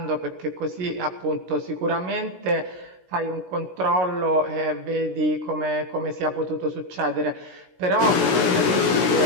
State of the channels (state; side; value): late; left; 16 ms